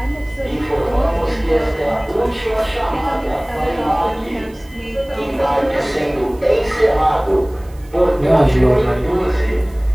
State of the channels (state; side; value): noise; right; hiss, 28 dB below the sound